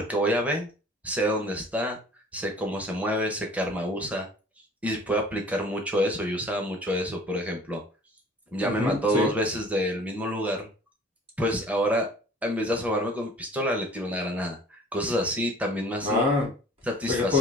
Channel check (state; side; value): normal; both; correlation 0.49